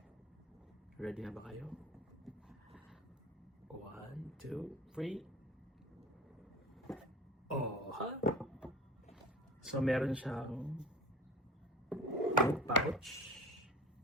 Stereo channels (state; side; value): normal; both; correlation 0.36